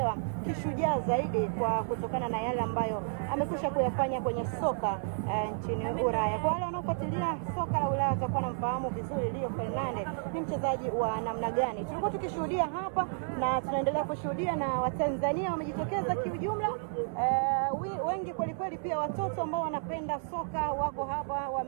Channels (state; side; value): silent; left; 57 dB below the other